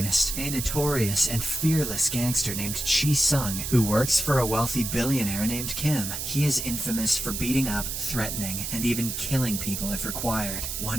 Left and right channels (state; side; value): noise; right; hiss, 4 dB below the sound